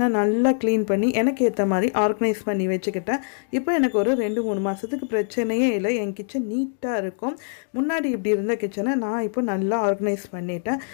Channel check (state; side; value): silent; right; digital silence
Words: நல்லா க்ளீன் பண்ணி எனக்கு ஏற்ற மாதிரி ஆர்கனைஸ் பண்ணி வச்சுக்கிட்டேன். இப்போ எனக்கு ஒரு 2-3 மாதத்துக்கு பிரச்சனையே இல்லை. என் கிச்சன் நீட்டாக இருக்கும். முன்னாடி இப்படி இருந்த கிச்சனை நான் இப்போ நல்லா ஆர்கனைஸ் பண்ணிட்டேன்.